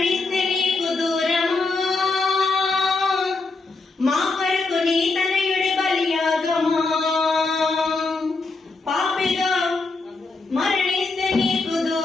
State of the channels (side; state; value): right; quieter; 3.7 dB